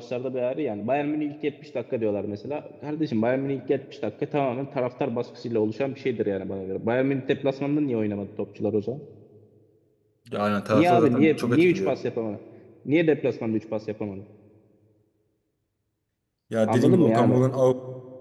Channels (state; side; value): identical; both; correlation 1.00